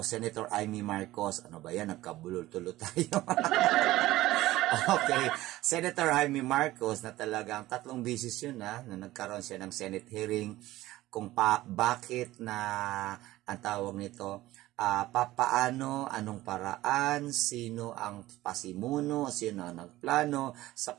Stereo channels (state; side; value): quieter; left; 16.7 dB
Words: Ano ba yan? Nagkabulol-tulo tayo. Okay. Senator Amy Marcos na talagang 3 beses yun na nagkaroon siya ng Senate hearing kung bakit na ang tawag nito, papaano, anong paraan, sino ang pasimuno, sino ang nagplano sa